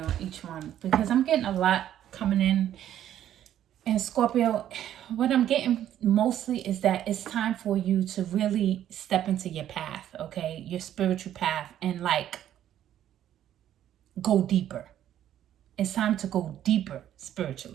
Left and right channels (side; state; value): left; quieter; 11.3 dB